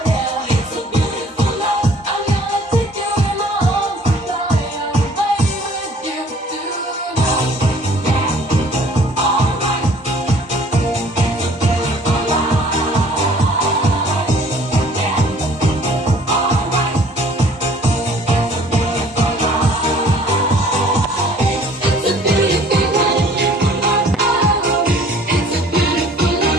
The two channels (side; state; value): both; normal; correlation 0.54